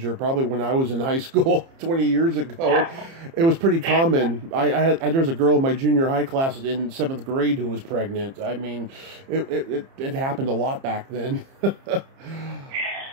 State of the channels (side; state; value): left; late; 30 ms